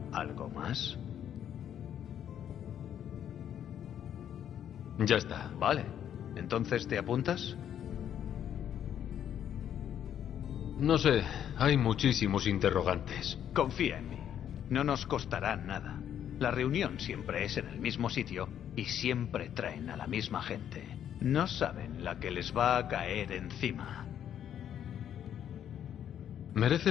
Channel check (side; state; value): right; quieter; 9.8 dB